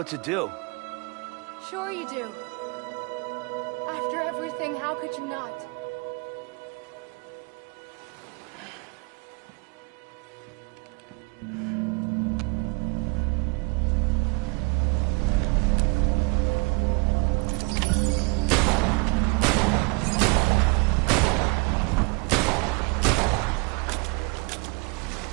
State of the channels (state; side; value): quieter; left; 29.7 dB